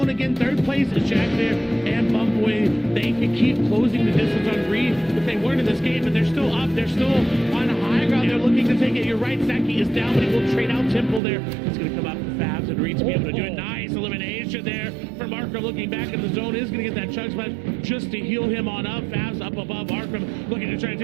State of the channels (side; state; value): left; drops out; at 11.2 s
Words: again. 3rd place is Jack there and Bumpway. They can keep closing the distance on Reed if they weren't in this game, but they're still up. They're still on high ground. They're looking to take it. You're right. Snacky is down, but he will trade out Temple there. It's going to come out for Fabs and Reed to be able to do it. Nice elimination there from Arkham. Looking back in the zone is going to get that chug smash just to heal him on up. Fabs up above Arkham, looking to try to